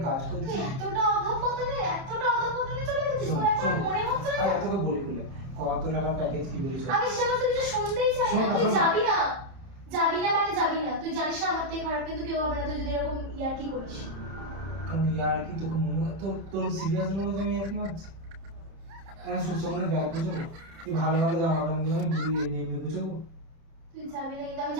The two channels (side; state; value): left; late; 30 ms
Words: কাজ করছি। তুই এতটা অধঃপতনে চলে গেছিস, তোর একবার মনে হচ্ছে না? আরে তোকে বলি বলে কত টাকা প্যাকেজ কি বলিস? আমি সে সমস্ত কিছু শুনতেই চাই শোন না, না, তুই শোন না। যাবি না। যাবি না মানে যাবি না, তুই জানিস না আমার থেকে খারাপ কিন্তু কেউ হবে না তুই যদি এরকম ইয়ার কি করিস। কারণ ইয়ার কি তোকে মনে হয় তোর সিরিয়াস মনে হয় যে আমি ইয়ার কি মারছি? আমি সুস্থ করে ব্যাগ গুছাবো, তুই ভালো ভালো জামা কাপড় নিয়ে আমি ঘুরিয়ে নিয়ে এমনি গুছাবো। তুই যাবি না কিন্তু আমি